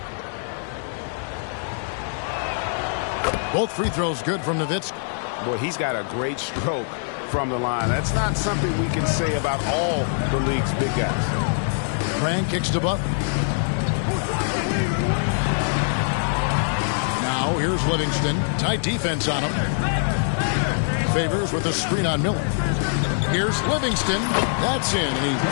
Both free throws good from Nowitzki. Boy, he's got a great stroke from the line. That's not something we can say about all the league's big guys. Grant kicks to Butler. Now here's Livingston. Tight defense on him. Favors with a screen on Miller. Here's Livingston. That's in, and he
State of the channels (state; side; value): silent; right; digital silence